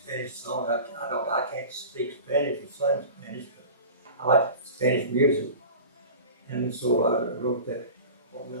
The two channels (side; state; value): both; inverted; correlation -0.36